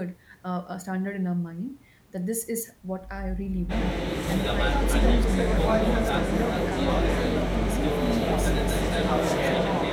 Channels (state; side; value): identical; both; correlation 1.00